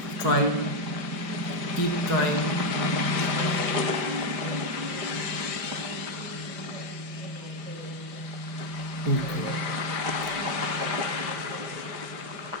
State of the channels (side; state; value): left; late; 5.1 ms